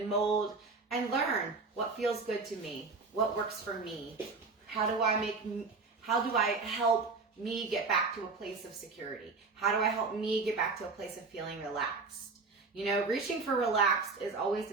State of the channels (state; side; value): quieter; left; 4.2 dB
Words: mold and learn what feels good to me, what works for me. How do I help me get back to a place of security? How do I help me get back to a place of feeling relaxed? You know, reaching for relaxed is always